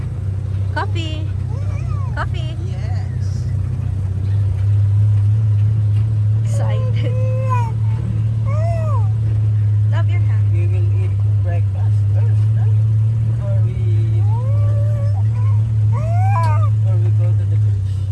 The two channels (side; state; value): both; identical; correlation 1.00